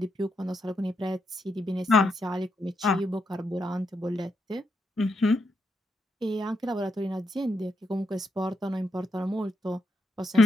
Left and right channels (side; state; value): both; normal; correlation 0.81